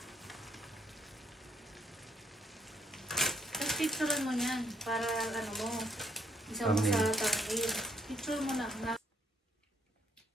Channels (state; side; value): normal; both; correlation 0.71